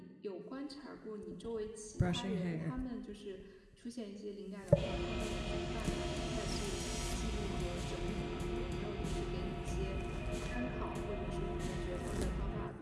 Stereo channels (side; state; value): both; identical; correlation 1.00